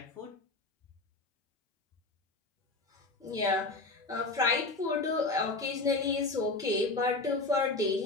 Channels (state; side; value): quieter; right; 3.3 dB